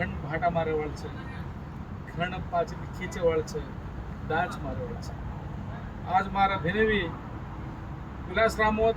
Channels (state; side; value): identical; both; correlation 1.00